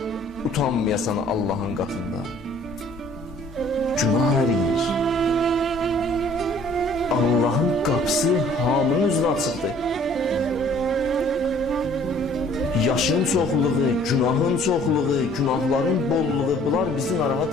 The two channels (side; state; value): both; normal; correlation 0.56